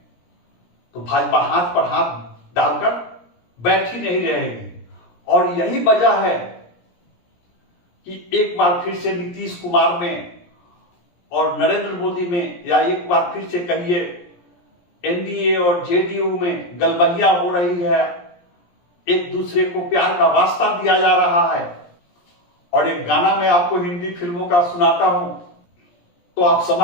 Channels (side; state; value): right; late; 17 ms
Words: तो भाजपा हाथ पर हाथ डालकर बैठी नहीं रहेगी। और यही वजह है कि एक बार फिर से नीतीश कुमार में और नरेंद्र मोदी में, या एक बार फिर से कहिए एनडीए और जेडीयू में गलबहिया हो रही है, एक दूसरे को प्यार का वास्ता दिया जा रहा है। और एक गाना मैं आपको हिंदी फिल्मों का सुनाता हूं तो आप